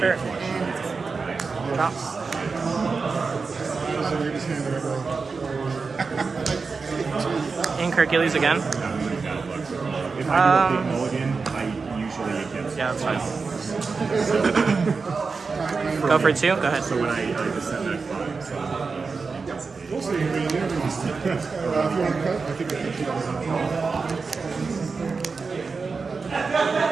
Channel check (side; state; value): left; quieter; 4.6 dB